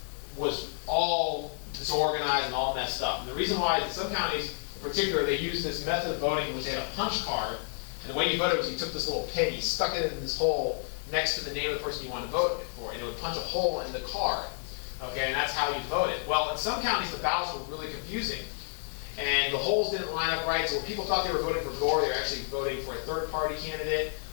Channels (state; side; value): silent; right; digital silence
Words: was all disorganized and all messed up. And the reason why is in some counties, in particular, they used this method of voting in which they had a punch card. And the way you voted was you took this little pin, you stuck it in this hole next to the name of the person you wanted to vote for, and it would punch a hole in the card. Okay, and that's how you voted. Well, in some counties, the ballots were really confusing, and the holes didn't line up right, so when people thought they were voting for Gore, they were actually voting for a third-party candidate,